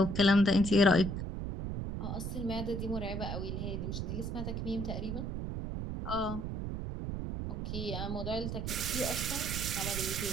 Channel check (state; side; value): noise; right; rumble, 4 dB below the sound